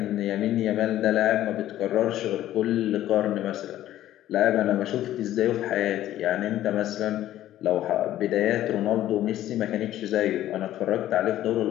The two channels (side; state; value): right; quieter; 13.2 dB